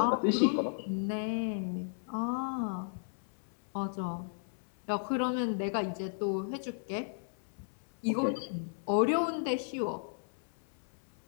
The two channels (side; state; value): right; silent; 55 dB below the other